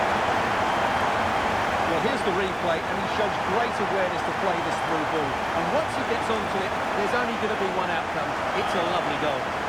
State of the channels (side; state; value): both; identical; correlation 1.00